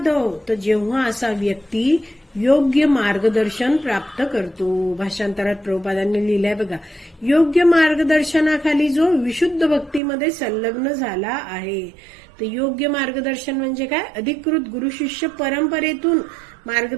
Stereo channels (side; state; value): left; drops out; at 10.0 s